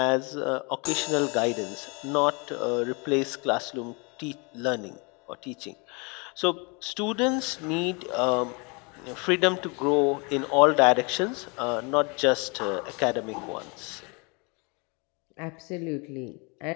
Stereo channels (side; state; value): right; quieter; 31.0 dB